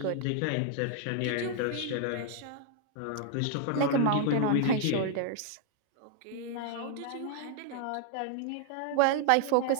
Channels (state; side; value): different; both; correlation 0.00